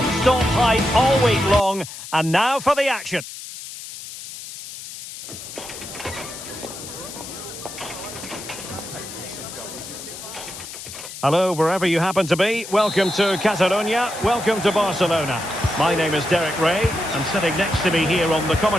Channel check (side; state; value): left; noise; hiss, 12 dB below the sound